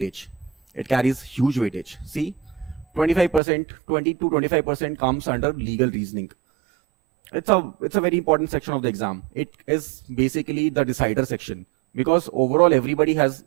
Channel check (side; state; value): left; drops out; at 3.4 s